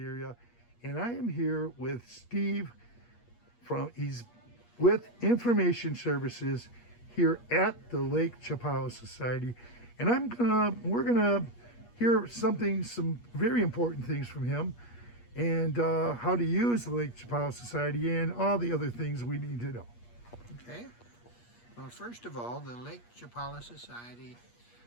And I am here with Steve he's with Information Services here at the Lake Chapala Society. And we're gonna hear some very important things from him and how to use the Lake Chapala Society and all the other things we need to know. Okay. Well, first of all, the Lake Chapala Society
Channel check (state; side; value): late; right; 8.4 ms